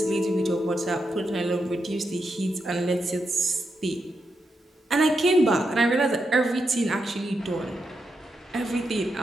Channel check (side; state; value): both; normal; correlation 0.84